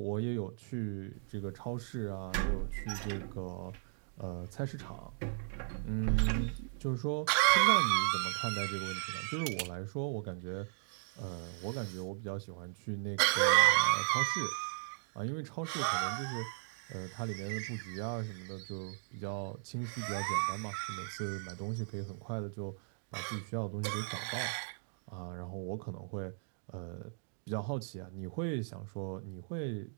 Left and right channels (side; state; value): left; silent; digital silence